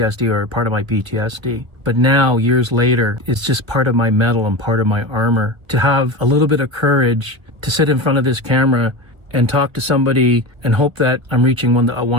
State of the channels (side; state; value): left; late; 1.6 ms